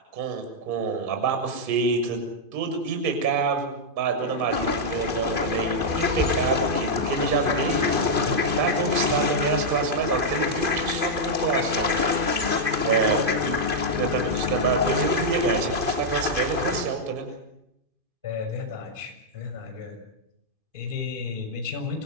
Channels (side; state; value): left; late; 2.5 ms